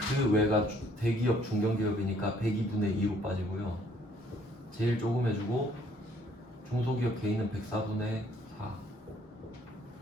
외가 대기업 중견기업이니까 102분의 2로 빠지고요. 제일 조금 해주고 중소기업 개인은 104분의 4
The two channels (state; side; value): normal; both; correlation 0.63